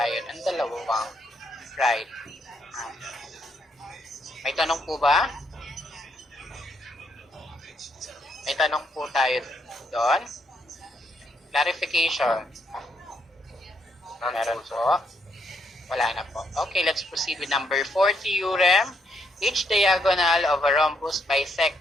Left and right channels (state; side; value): normal; both; correlation 0.75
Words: ng dalawang right angles. May tanong po ba? May tanong po tayo doon. Clarification. Meron po. Wala na po. Okay, let's proceed with number 4 theorem. Each diagonal of a rhombus